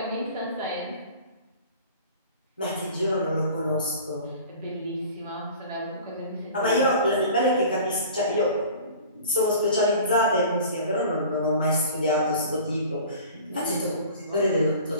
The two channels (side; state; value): both; inverted; correlation -0.43